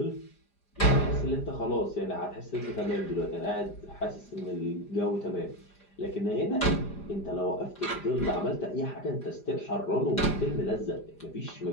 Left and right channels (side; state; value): right; late; 5.0 ms